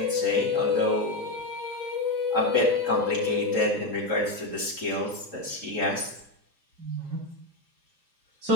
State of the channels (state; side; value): late; left; 2.8 ms